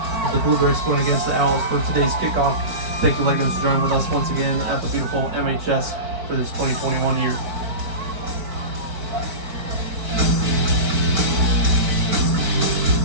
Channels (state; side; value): late; left; 4.5 ms